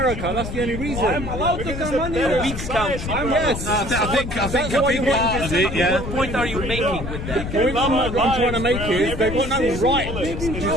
That's the only reason. They're a weak country. Yes, I think that's why you want. What point are you making with that? The point I'm trying to make is they've got no right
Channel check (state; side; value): noise; left; rumble, 6 dB below the sound